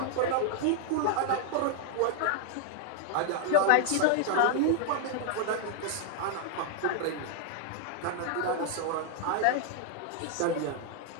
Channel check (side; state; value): both; different; correlation 0.00